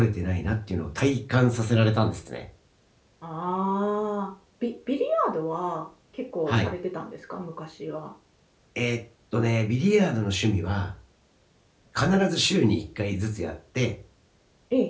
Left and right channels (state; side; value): identical; both; correlation 1.00